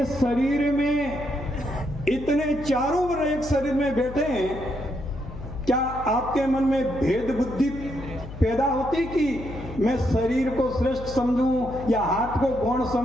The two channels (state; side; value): noise; left; hum, 12 dB below the sound